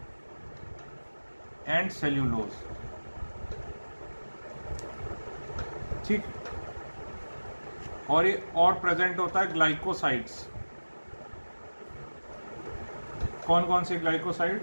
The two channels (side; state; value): both; inverted; correlation -1.00